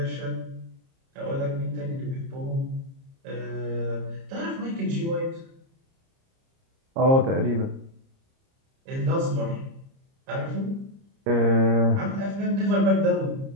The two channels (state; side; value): late; left; 30 ms